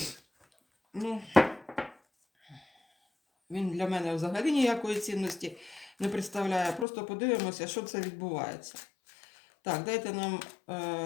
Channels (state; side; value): drops out; right; at 6.9 s